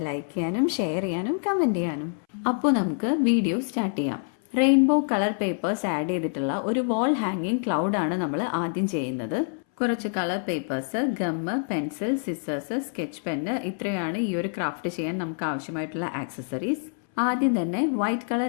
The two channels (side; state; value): right; silent; 61 dB below the other